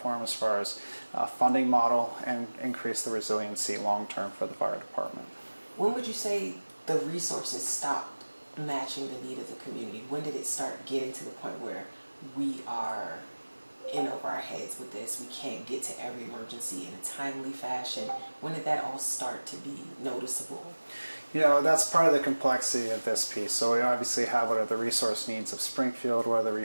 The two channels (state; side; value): inverted; both; correlation -1.00